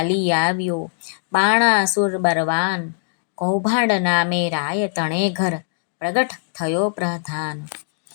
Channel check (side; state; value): right; silent; digital silence